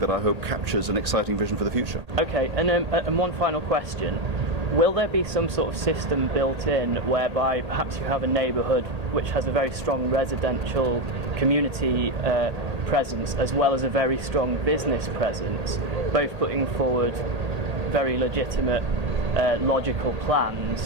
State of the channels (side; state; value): left; late; 1.8 ms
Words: I hope captures an exciting vision for the future. Okay, and one final question. Will there be some sort of system built in whereby perhaps you have a neighbourhood which has a very strong residential community presence as well as a very strong business presence, both putting forward very legitimate, logical